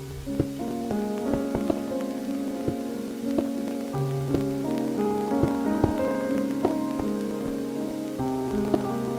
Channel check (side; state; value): both; identical; correlation 1.00